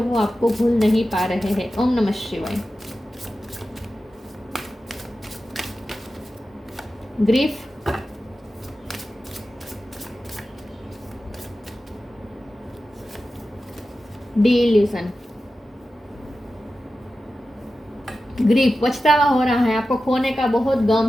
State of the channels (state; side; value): normal; both; correlation 0.93